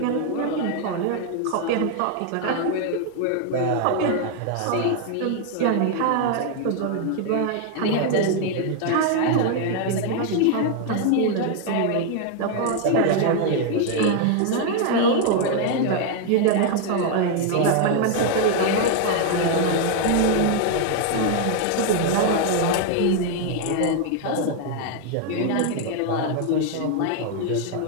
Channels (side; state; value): both; different; correlation 0.00